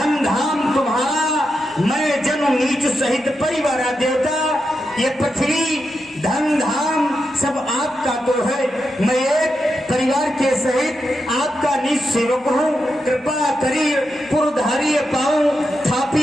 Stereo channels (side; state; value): both; normal; correlation 0.87